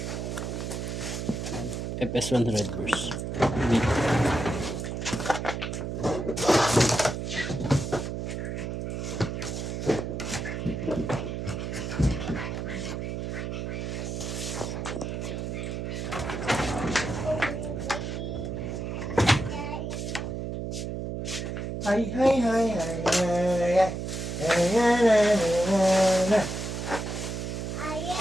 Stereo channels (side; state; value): right; noise; hum, 4 dB below the sound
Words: FS1 Red Burst. Dito. Hi, hi, hi, hi, hi, hi. Hi,